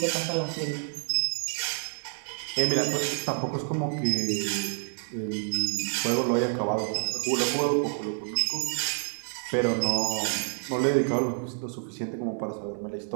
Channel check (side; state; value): left; silent; 59 dB below the other